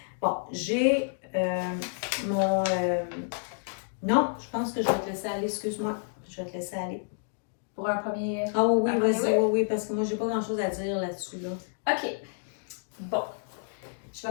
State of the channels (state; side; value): silent; right; digital silence